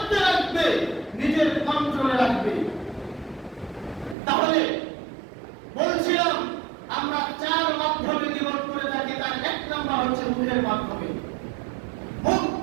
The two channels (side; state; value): left; drops out; at 4.2 s